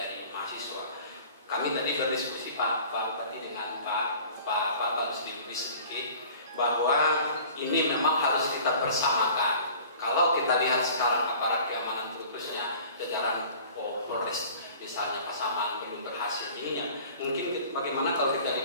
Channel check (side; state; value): both; inverted; correlation -0.46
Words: mahasiswa. Kami tadi berdiskusi Pak berarti dengan Pak Rusdi sedikit bahwa ini memang harus kita bersamakan. Kalau kita lihat sekarang aparat keamanan khususnya jajaran Polres misalnya Pasaman belum berhasil ininya. Mungkin bagaimana kalau kita